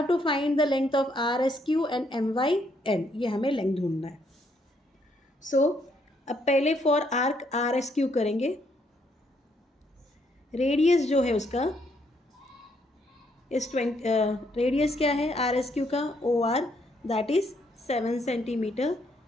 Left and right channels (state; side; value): normal; both; correlation 0.72